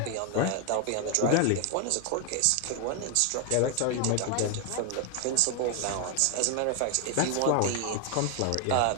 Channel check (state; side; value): different; both; correlation 0.00